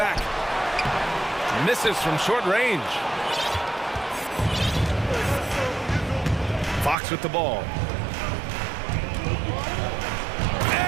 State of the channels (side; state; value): left; drops out; at 7.0 s